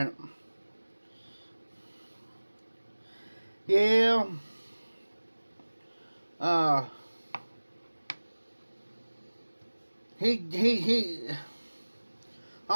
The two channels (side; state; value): both; inverted; correlation -1.00